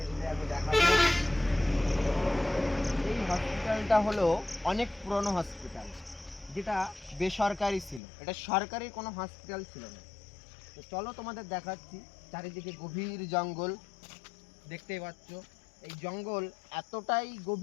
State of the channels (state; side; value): drops out; right; at 8.0 s